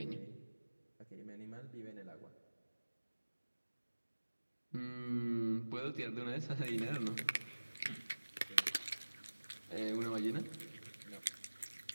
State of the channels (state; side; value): inverted; both; correlation -1.00